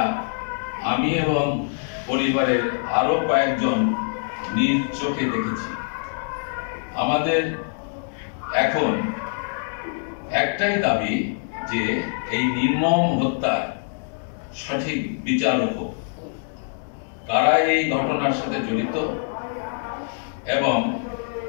আমি এবং পরিবারের আরো কয়েকজন নিজ চোখে দেখেছি। আমাদের এখন একটাই দাবি যে এই নির্মম হত্যার সঠিক বিচার হোক। কারা এই ঘটনার সাথে জড়িত এবং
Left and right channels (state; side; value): silent; right; 61 dB below the other